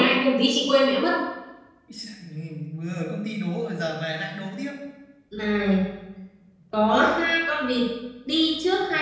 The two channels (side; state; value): both; identical; correlation 1.00